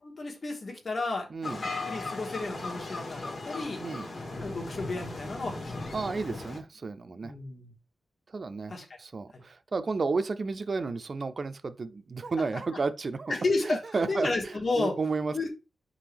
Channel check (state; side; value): normal; both; correlation 0.89